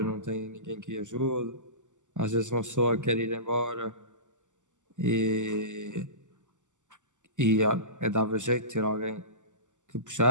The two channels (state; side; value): late; left; 0.86 ms